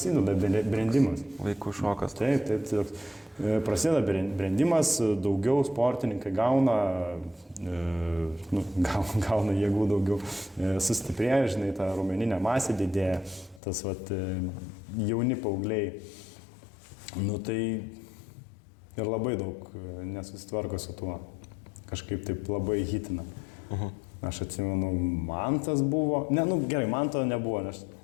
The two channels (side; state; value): right; drops out; at 13.6 s